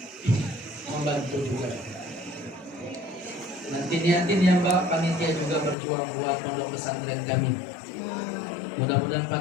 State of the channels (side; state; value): right; drops out; at 5.8 s